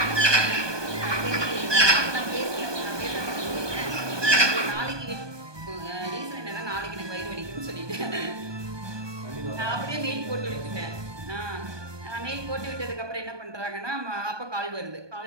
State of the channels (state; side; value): late; left; 1.2 ms